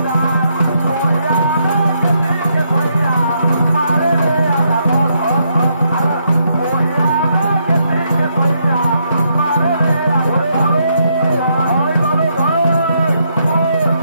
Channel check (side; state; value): both; inverted; correlation -0.76